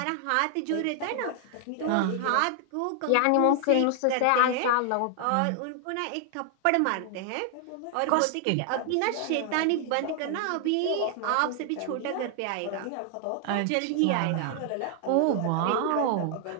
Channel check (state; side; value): different; both; correlation 0.00